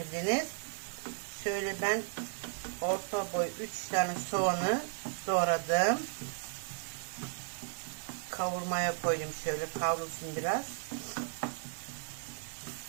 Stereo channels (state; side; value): silent; left; 54 dB below the other